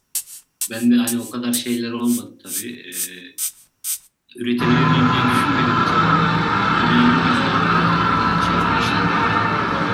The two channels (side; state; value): both; identical; correlation 1.00